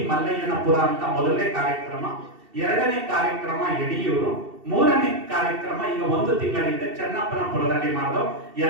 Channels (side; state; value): left; late; 2.7 ms